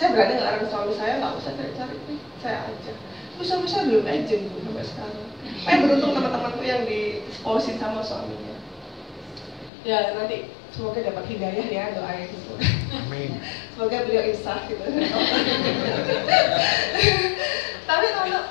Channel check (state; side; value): drops out; right; at 9.7 s